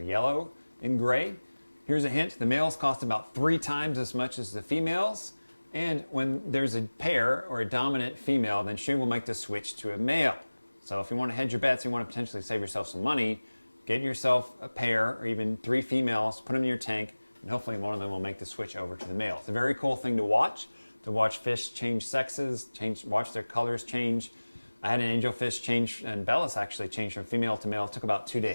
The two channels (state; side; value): inverted; both; correlation -1.00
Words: yellow and gray. Here's a hint. The males cost about 3 times as much as the females. And when there's a pair or a dominant female, then she will make the switch to a male. So if you want to hedge your bets, you want to potentially save yourself some money, get yourself a pair or even 3 females, put them in your tank, and hopefully one of them will make the switch over to the male. It's a very cool thing to watch fish change sexes, watch their colors change. I had an angelfish change, and Bellis actually changed from female to male. It took about 2